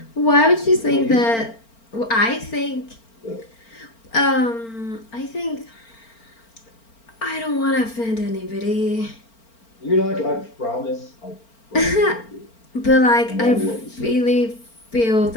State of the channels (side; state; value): right; late; 4.4 ms